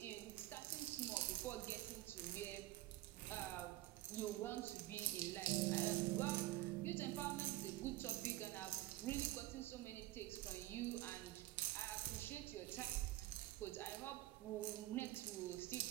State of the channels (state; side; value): quieter; left; 17.1 dB